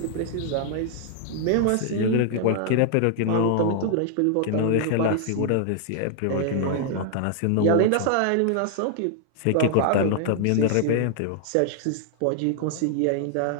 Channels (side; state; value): both; different; correlation 0.00